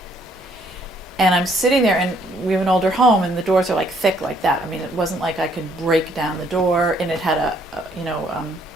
And I'm sitting there, and we have an older home, and the doors are like thick like that. I mean, it wasn't like I could break down the door, and it had a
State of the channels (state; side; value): normal; both; correlation 0.66